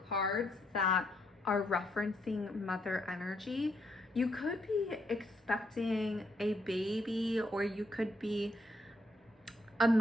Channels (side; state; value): both; normal; correlation 0.75